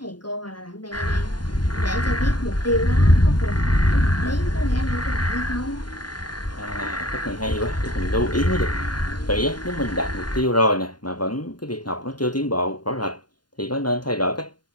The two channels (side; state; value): right; late; 0.70 ms